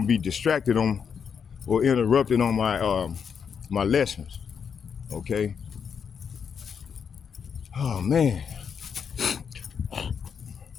be distracted on or interrupted on my my lessons. Okay. Oh man.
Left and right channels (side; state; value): right; quieter; 6.8 dB